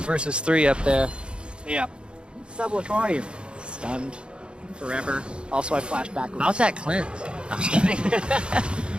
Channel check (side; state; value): left; late; 0.054 ms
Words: 3 up there. Yeah. Sublatory. Stunned. Forever. Also, I flash backwards. How's that cleanse? I'm just kidding.